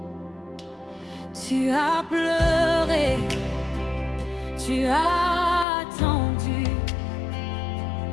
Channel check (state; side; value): drops out; right; at 5.7 s